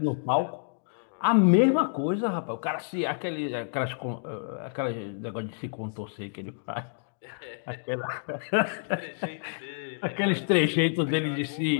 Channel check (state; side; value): silent; right; digital silence